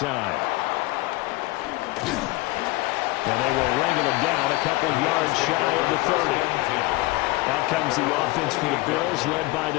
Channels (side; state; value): right; quieter; 20.7 dB